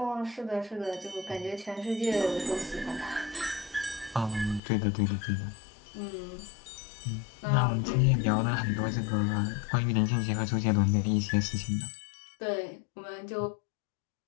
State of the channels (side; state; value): right; drops out; at 4.6 s